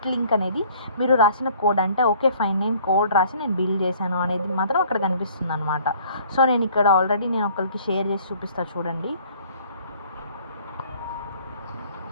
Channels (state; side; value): inverted; both; correlation -0.56